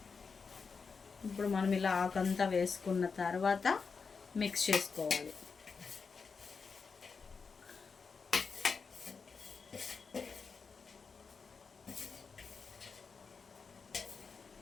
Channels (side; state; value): right; quieter; 5.1 dB